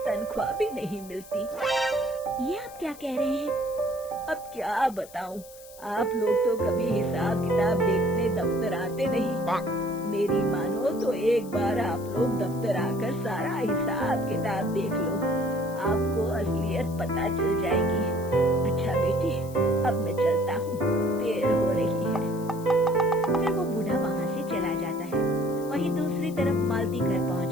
तनख्वाह भी नहीं मिलती। ये आप क्या कह रहे हैं? अब क्या बताऊँ, आप लोग तो कभी हिसाब किताब देखने दफ्तर आते नहीं। मेरी मानो तो एक बार आप लोग दफ्तर आकर सारा हिसाब किताब देख लो, आपको असलियत पता चल जाएगी। अच्छा बेटी, अब मैं चलता हूँ, देर हो रही है। फिर वो बूढ़ा वहाँ से चला जाता है। वहीं दूसरी तरफ मालती घर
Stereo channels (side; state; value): left; noise; hiss, 20 dB below the sound